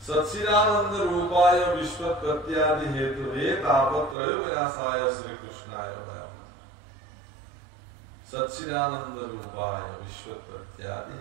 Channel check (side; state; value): left; drops out; at 4.2 s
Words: সচ্চিদানন্দ ৰূপায় বিশ্বৎপত্যাদি হেতু হে তাপত্ৰয় বিনাশায় শ্ৰীকৃষ্ণায় ভয়ঃ সচ্চিদানন্দ ৰূপায় বিশ্বৎপত্যাদি